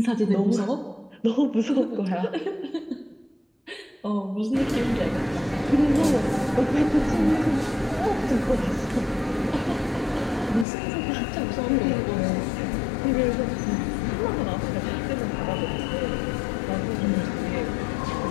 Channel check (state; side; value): drops out; right; at 10.7 s